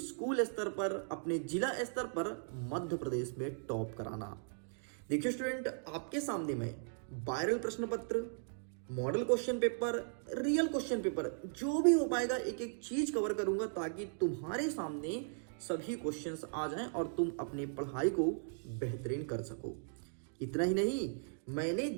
स्तर पर, अपने जिला स्तर पर मध्य प्रदेश में टॉप कराना। देखिए स्टूडेंट, आपके सामने में वायरल प्रश्न पत्र, model question paper, real question paper, जो भी हो पाएगा एक एक चीज कवर करूंगा ताकि तुम्हारे सामने सभी क्वेश्चंस आ जाएं और तुम अपनी पढ़ाई को बेहतरीन कर सको। इतना ही नहीं, मैंने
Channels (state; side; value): silent; left; digital silence